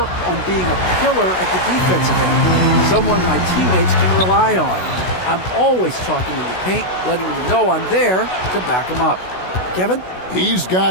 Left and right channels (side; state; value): right; late; 16 ms